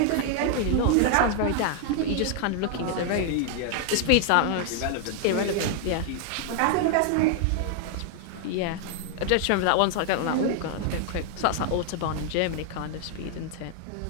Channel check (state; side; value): different; both; correlation 0.00